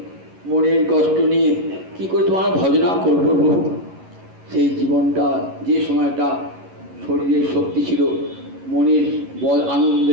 মনের কষ্ট নিয়ে কি করে তোমার ভজনা করবো প্রভু? সেই জীবনটা, যে সময়টা শরীরের শক্তি ছিল, মনের বল আনন্দ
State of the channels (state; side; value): late; left; 11 ms